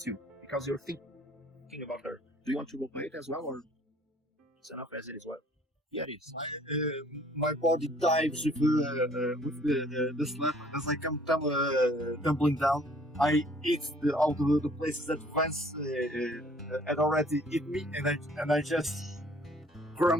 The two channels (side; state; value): both; normal; correlation 0.57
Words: you because you're thinking about her. Do you want to roleplay it as well, or it's enough as it is? Well, yeah, it is. My body dives with the slap as I come tumbling down. I eat all the places that Vance had already eaten me, and I just